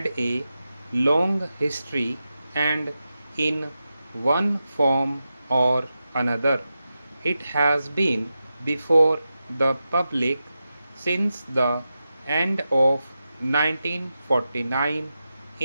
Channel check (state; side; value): inverted; both; correlation -0.91